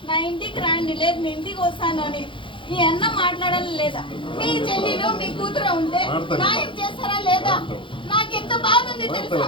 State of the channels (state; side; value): late; right; 0.25 ms